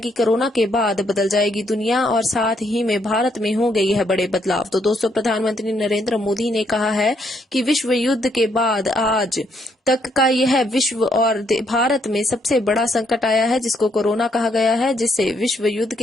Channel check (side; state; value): both; normal; correlation 0.73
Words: कोरोना के बाद बदल जाएगी दुनिया और साथ ही में भारत में हो गई है बड़े बदलाव। तो दोस्तों, प्रधानमंत्री नरेंद्र मोदी ने कहा है कि विश्व युद्ध के बाद आज तक का यह विश्व और भारत में सबसे बड़ा संकट आया है जिसको कोरोना कहा गया है, जिससे विश्व युद्ध